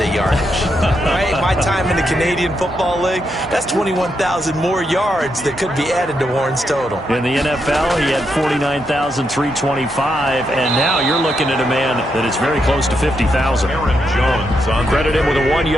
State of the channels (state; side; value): normal; both; correlation 0.81